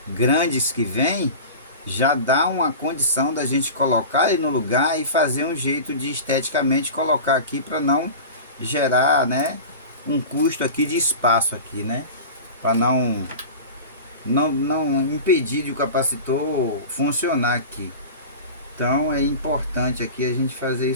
grandes que vem, já dá uma condição da gente colocar ele no lugar e fazer um jeito de esteticamente colocar aqui para não gerar, né, um custo aqui de espaço aqui, né, para não impedir de o capacitor funcionar aqui. Então é importante aqui a gente fazer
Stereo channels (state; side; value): inverted; both; correlation -0.32